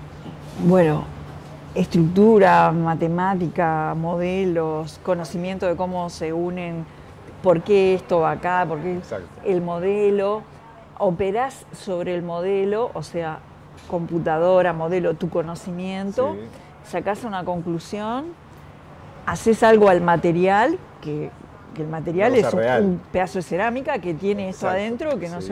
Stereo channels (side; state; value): both; identical; correlation 1.00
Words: bueno, estructura, matemática, modelos, conocimiento de cómo se unen, por qué esto va acá, por qué el modelo. Operás sobre el modelo, o sea, computadora, modelo, tu conocimiento, sacás una conclusión, haces algo al material, que el material es un pedazo de cerámica que tiene esto adentro, que no